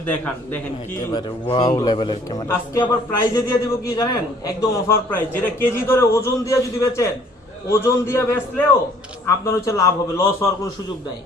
দেখেন কি ওয়াও লেভেলের ক্যামেরা। আজকে আবার প্রাইজে দিয়ে দিব কি জানেন, একদম অফার প্রাইস, যেটা কেজি ধরে ওজন দিয়ে যদি বেচেন, ওজন দিয়ে বেচলেও আপনার হচ্ছে লাভ হবে, লস হওয়ার কোনো সুযোগ নাই।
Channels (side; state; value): both; normal; correlation 0.58